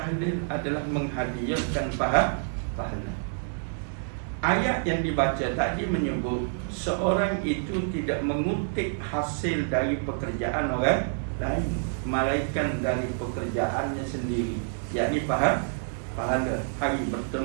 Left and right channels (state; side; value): silent; left; digital silence